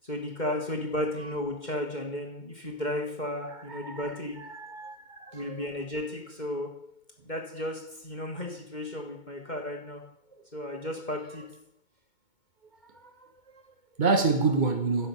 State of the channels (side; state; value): right; late; 2.2 ms